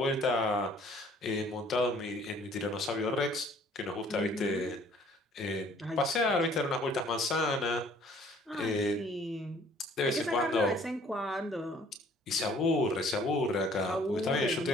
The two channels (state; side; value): normal; both; correlation 0.57